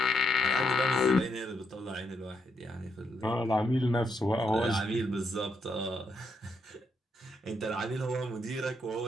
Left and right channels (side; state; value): both; normal; correlation 0.78